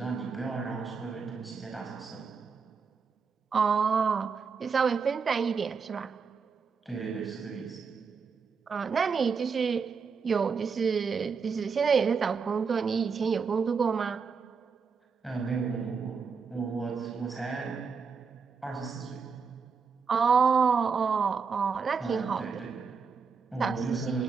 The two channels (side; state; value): left; quieter; 5.5 dB